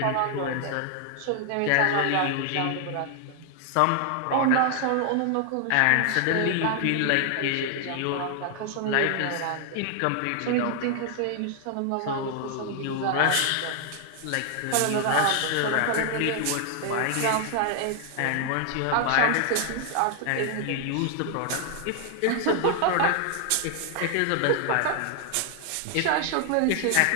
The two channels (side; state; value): both; different; correlation 0.00